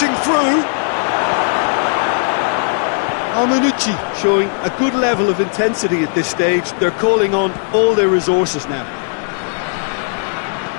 through. Manucci showing a good level of intensity at this stage. They're calling on all their resources now.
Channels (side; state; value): right; silent; 63 dB below the other